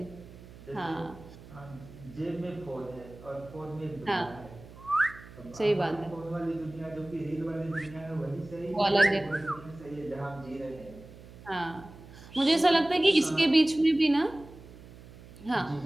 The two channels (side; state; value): right; noise; hum, 18 dB below the sound